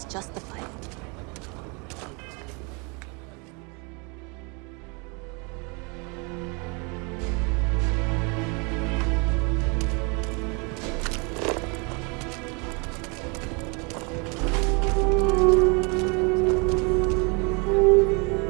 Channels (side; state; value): left; quieter; 31.6 dB